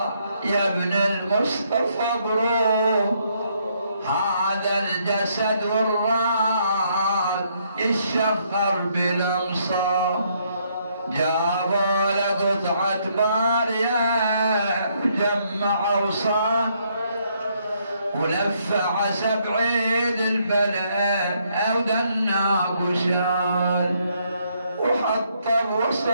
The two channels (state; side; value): inverted; both; correlation -0.72